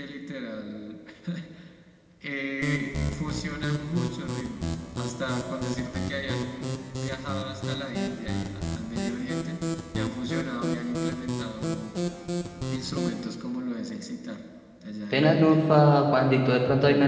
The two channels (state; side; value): identical; both; correlation 1.00